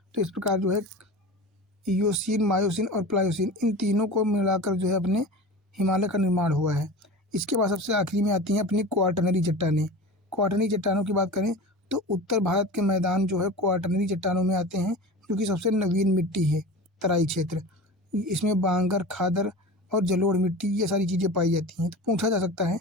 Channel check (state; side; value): normal; both; correlation 0.33